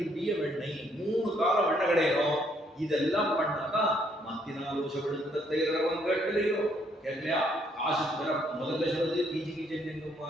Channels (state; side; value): normal; both; correlation 0.69